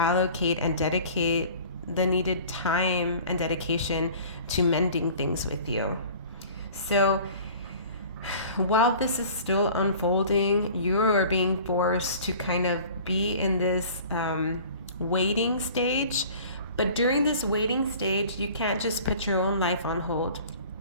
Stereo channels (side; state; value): both; inverted; correlation -0.45